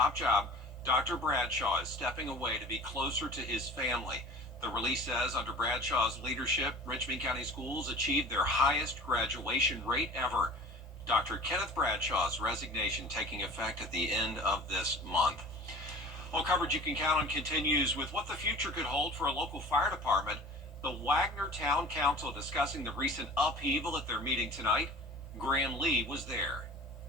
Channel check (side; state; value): both; normal; correlation 0.41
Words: job, Dr. Bradshaw is stepping away to be closer to his family. The release says under Bradshaw's leadership, Richmond County schools achieved their highest graduation rate ever. Dr. Kenneth Bradshaw's resignation taking effect at the end of this month. All coverage you can count on continues with what the future could hold for a local fire department. The Wagner Town Council discussing the recent upheaval at their meeting tonight. Graham Lee was there.